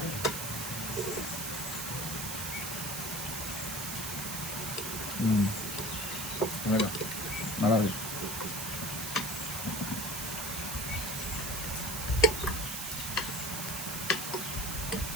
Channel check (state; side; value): noise; right; hiss, 3 dB below the sound